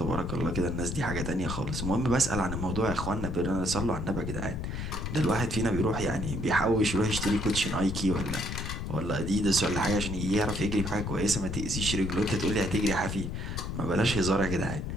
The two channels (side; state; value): left; noise; rumble, 4 dB below the sound